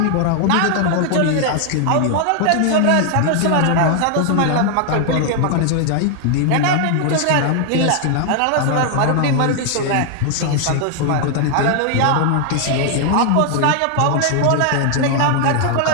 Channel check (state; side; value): different; both; correlation 0.00